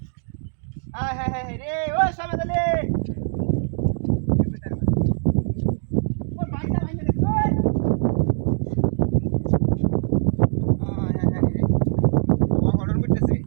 হ্যাঁ রে ও সময় দালি ও বাইটা বাইটা দেখো রে ও অর্ডার করতেছে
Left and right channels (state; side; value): silent; left; digital silence